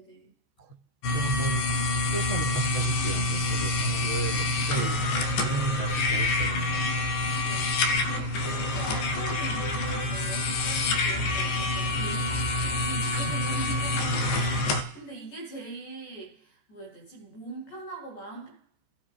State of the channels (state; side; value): late; right; 14 ms